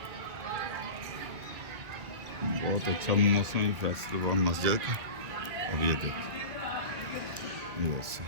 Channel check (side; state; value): left; late; 1.9 ms